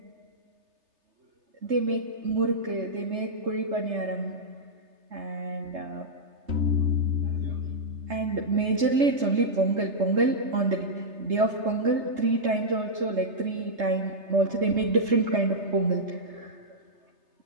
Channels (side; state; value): left; late; 3.3 ms